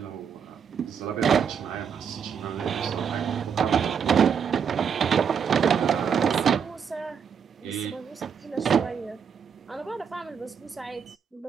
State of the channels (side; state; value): left; quieter; 7.1 dB